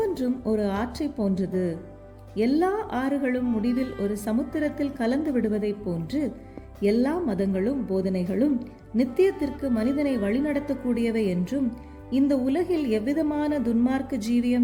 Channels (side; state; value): both; identical; correlation 1.00